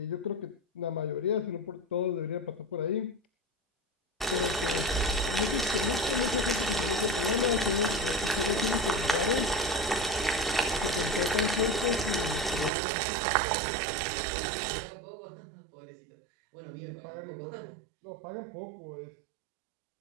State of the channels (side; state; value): left; drops out; at 12.7 s